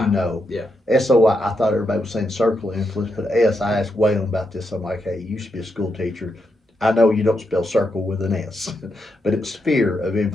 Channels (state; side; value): normal; both; correlation 0.83